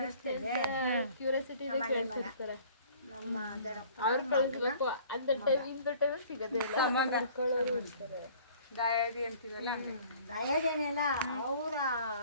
ದಾಯಾದಿ ಅಂತೀವಲ್ಲ, ದಯದೇನಿಲ್ಲ ಅವರ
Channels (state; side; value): inverted; both; correlation -0.51